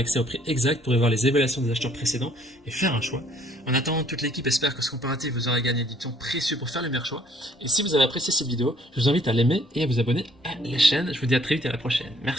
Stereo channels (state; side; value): normal; both; correlation 0.62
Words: au prix exact pour y voir les évaluations des acheteurs précédents et faire un choix. En attendant, toute l'équipe espère que ce comparatif vous aura gagné du temps précieux pour faire le meilleur choix. Et si vous avez apprécié cette vidéo, je vous invite à l'aimer et à vous abonner à la chaîne. Je vous dis à très vite et à la prochaine.